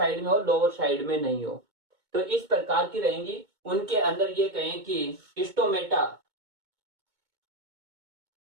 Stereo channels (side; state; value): left; late; 2.2 ms